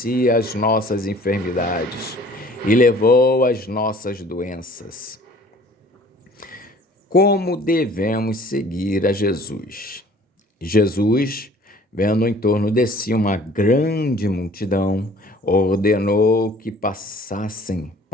as nossas enfermidades e levou as nossas doenças. Como devemos seguir a Jesus? Jesus, vendo em torno de si uma grande multidão, ordenou que passassem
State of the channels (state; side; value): normal; both; correlation 0.51